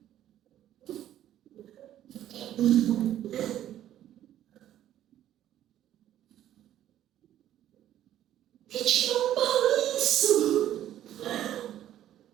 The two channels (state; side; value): quieter; left; 12.0 dB